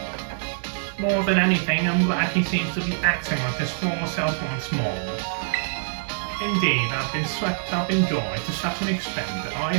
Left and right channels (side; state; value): left; silent; digital silence